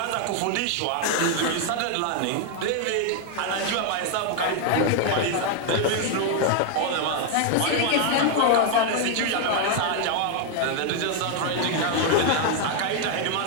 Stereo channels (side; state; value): both; different; correlation 0.00